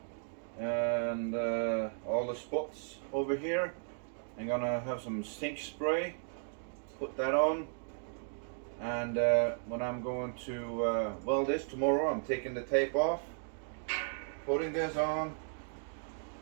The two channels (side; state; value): left; silent; digital silence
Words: and all the spots over here. I'm gonna have some sink spray, put that on, and when I'm going to weld this tomorrow, I'm taking the tape off, putting this on,